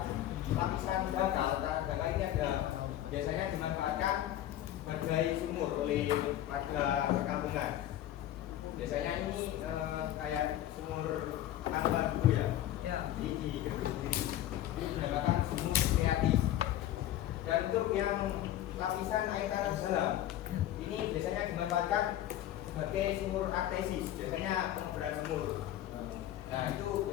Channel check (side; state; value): right; quieter; 12.8 dB